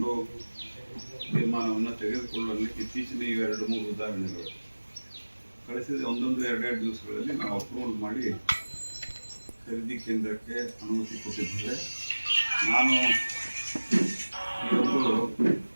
ತೀರ್ಮಾನವನ್ನು ತೆಗೆದುಕೊಳ್ಳಲಿಕ್ಕೆ ಇತ್ತೀಚಿನ 2-3 ಉದಾಹರಣೆಗಳು ಕಳಿಸಿದ ಒಂದೊಂದು 2-2 ದಿವಸಗಳಲ್ಲಿ ನಾವು ಅಪ್ರೂವಲ್ ಮಾಡಿ ಖರೀದಿ ಕೇಂದ್ರಕ್ಕೆ ಅನುಮತಿ ಕೊಟ್ಟಿದ್ದೇವೆ. ನಾನು ಇವತ್ತು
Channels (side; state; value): both; inverted; correlation -1.00